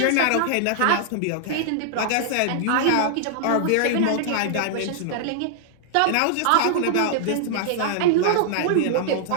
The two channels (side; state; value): both; different; correlation -0.01